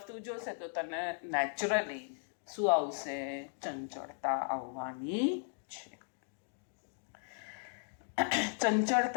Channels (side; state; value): right; silent; digital silence